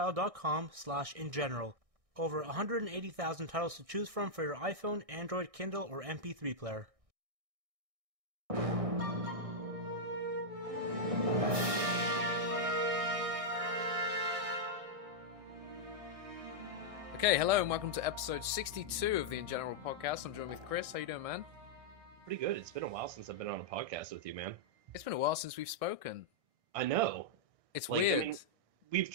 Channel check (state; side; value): late; left; 1.6 ms